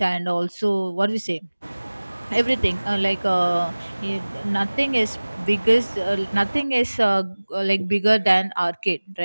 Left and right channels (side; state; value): both; inverted; correlation -1.00